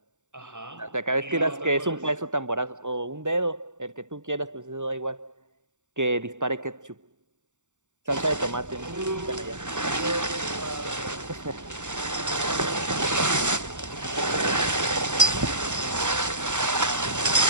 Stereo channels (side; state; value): left; late; 0.85 ms